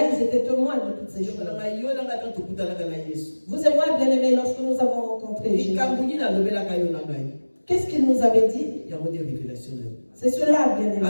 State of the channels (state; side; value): inverted; both; correlation -1.00